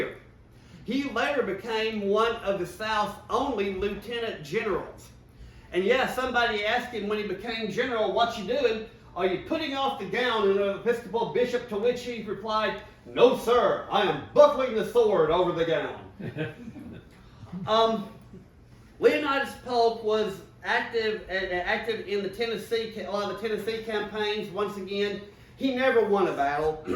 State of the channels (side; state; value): both; identical; correlation 1.00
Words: He later became one of the South's only lieutenant generals. And yeah, somebody asked him when he became general, "What you doing? Are you putting off the gown of an Episcopal bishop?" To which he replied, "No, sir, I am buckling the sword over the gown." Leonidas Polk was active in the a lot of the Tennessee campaigns. Once again, he never won a battle.